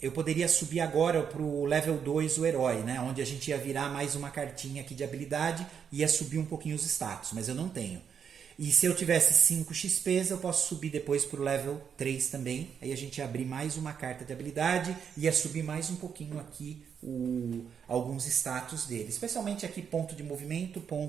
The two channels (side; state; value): left; quieter; 7.4 dB